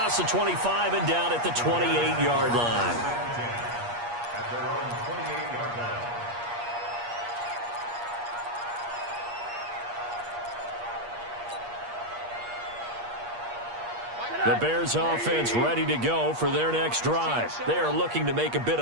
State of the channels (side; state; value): left; late; 8.4 ms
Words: the 25 and down at the 28-yard line. At their own 28-yard line. The Bears offense ready to go for their next drive. They are looking to make a bit